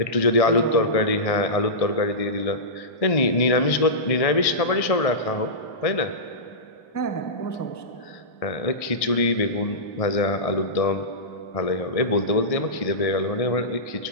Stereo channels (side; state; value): right; late; 1.6 ms